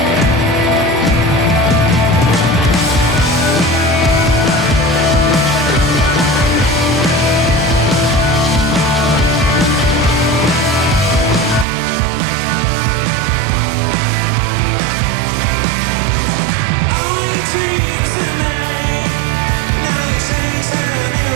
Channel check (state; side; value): drops out; left; at 11.7 s